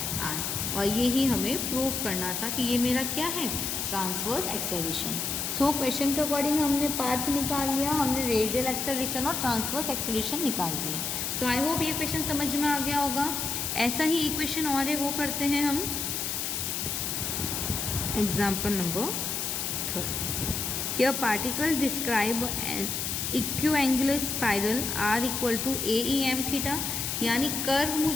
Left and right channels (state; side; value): noise; left; hiss, 2 dB below the sound